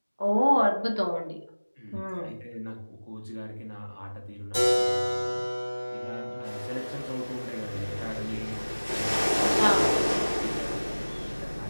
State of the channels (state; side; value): inverted; both; correlation -1.00